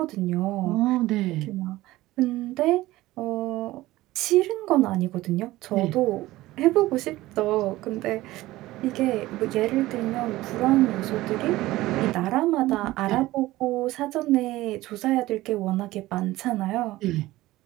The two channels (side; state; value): left; quieter; 17.4 dB